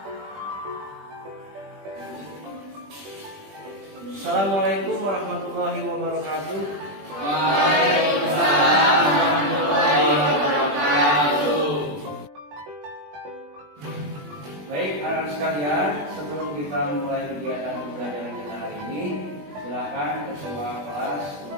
Assalamualaikum warahmatullahi wabarakatuh. Waalaikumsalam warahmatullahi wabarakatuh. Baik, anak-anak sekalian, sebelum kita memulai kegiatan pembelajaran kita hari ini, silakan ketua kelas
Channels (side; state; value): left; late; 20 ms